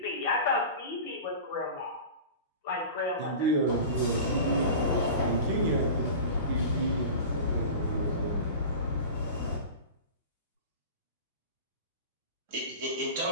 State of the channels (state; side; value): inverted; both; correlation -0.34